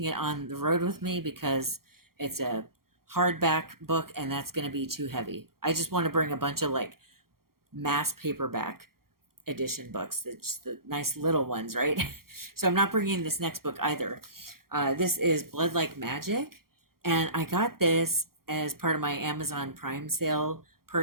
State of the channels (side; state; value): left; late; 0.93 ms